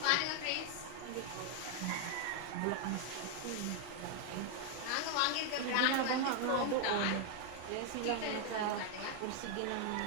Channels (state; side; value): different; both; correlation 0.00